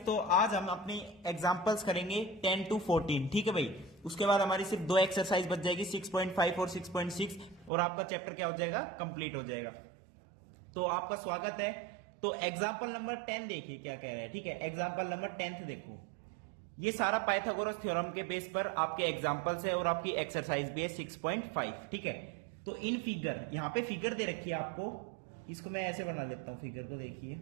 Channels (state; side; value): drops out; left; at 7.7 s